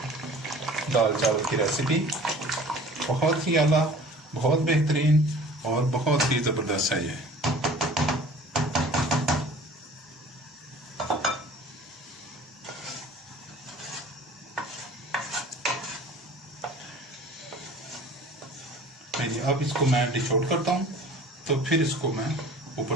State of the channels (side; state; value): both; normal; correlation 0.46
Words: दाल चावल की रेसिपी। बहुत ही आला, बहुत बेहतरीन और बहुत ही ज़बरदस्त है ये। अब इसको मैं डिश आउट करता हूँ, तो फिर इसको मैं